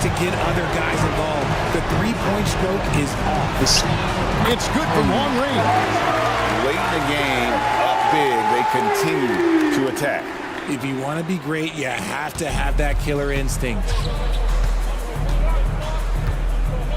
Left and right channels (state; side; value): identical; both; correlation 1.00